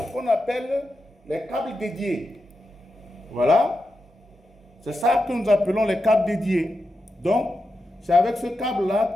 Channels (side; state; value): both; normal; correlation 0.88